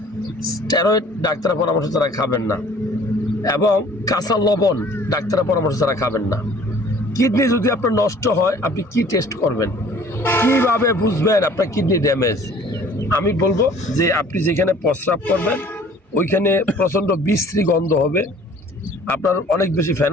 স্টেরয়েড ডাক্তারের পরামর্শ ছাড়া খাবেন না, এবং কাঁচা লবণ ডাক্তারের পরামর্শ ছাড়া খাবেন না। কিডনি যদি আপনার নষ্ট হয়, আপনি কি টেস্ট করবেন? কিভাবে বুঝবেন আপনার কিডনি ড্যামেজ? আমি বলবো যে আপনি যেখানে প্রস্রাব করবেন ওইখানে প্রচণ্ড বিশ্রী গন্ধ হবে, আপনার অনেক বেশি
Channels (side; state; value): both; normal; correlation 0.52